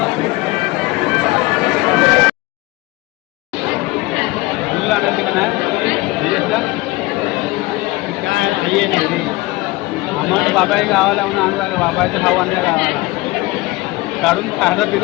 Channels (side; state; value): right; quieter; 20.8 dB